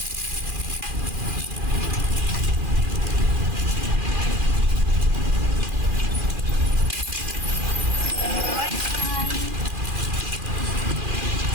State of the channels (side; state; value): left; late; 2.4 ms